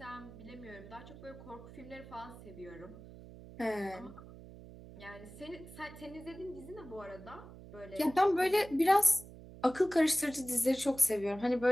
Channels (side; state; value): right; noise; hum, 16 dB below the sound